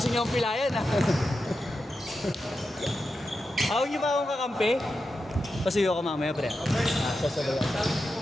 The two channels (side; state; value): both; normal; correlation 0.89